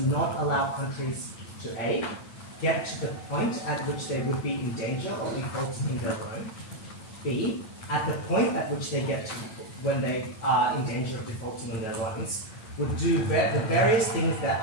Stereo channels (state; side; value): late; right; 9.2 ms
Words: not allow countries to A, get to the point at which they would be in danger of defaulting in their loan, B, at the point at which they get to when they are in danger of defaulting on their loans, would do the various things that